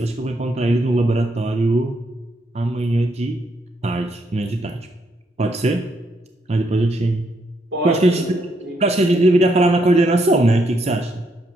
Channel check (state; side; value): normal; both; correlation 0.75